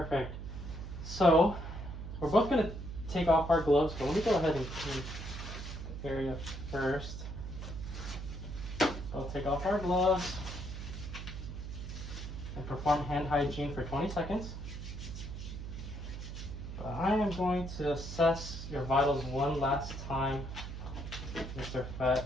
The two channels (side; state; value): right; noise; hum, 8 dB below the sound